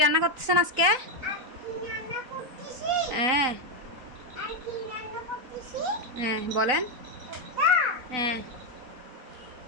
রান্না করতেছেন আজকে? হ্যাঁ হ্যাঁ বলেন। হ্যাঁ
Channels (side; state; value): left; late; 4.0 ms